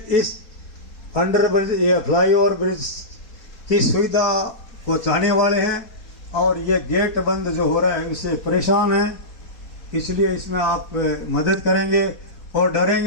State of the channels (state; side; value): late; right; 4.2 ms